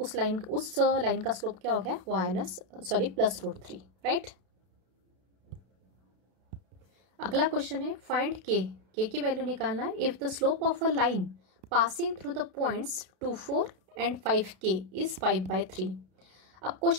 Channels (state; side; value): late; left; 32 ms